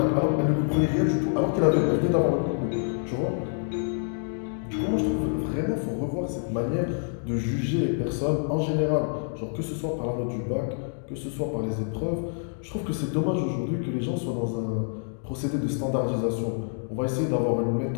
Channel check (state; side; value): silent; right; digital silence